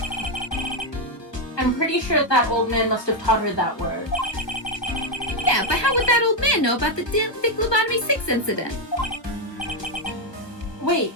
I'm pretty sure that old man must have taught her that word. Yeah, but how would that old man know about the Dick Lobotomy 6 incident? Wait,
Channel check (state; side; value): late; right; 1.3 ms